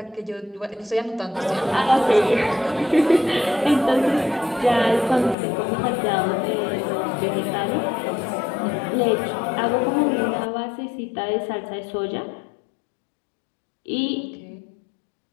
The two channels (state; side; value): drops out; right; at 5.4 s